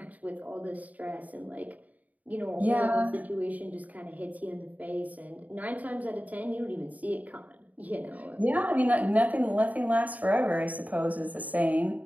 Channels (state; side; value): late; left; 0.074 ms